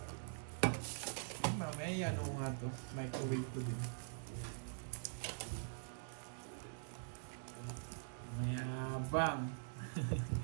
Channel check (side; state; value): left; silent; digital silence